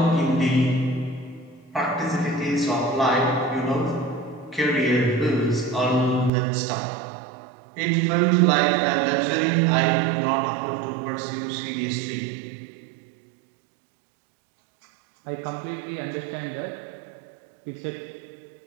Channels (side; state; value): left; drops out; at 6.3 s